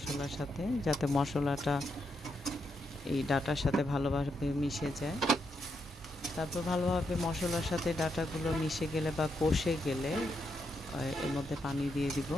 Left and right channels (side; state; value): both; normal; correlation 0.81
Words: সাথে, যাতে মশলাটা এই ডাঁটার সাথে ভালোভাবে মিশে যায়। তারপর ভালোভাবে মশলার সাথে ডাঁটাগুলো মিশে গেলে বা কষে গেলে এর মধ্যে পানি দিয়ে দিব।